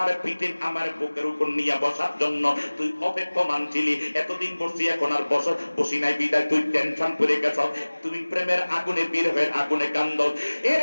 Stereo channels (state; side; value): inverted; both; correlation -1.00